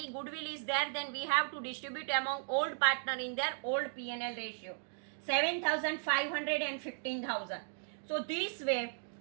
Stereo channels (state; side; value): silent; left; digital silence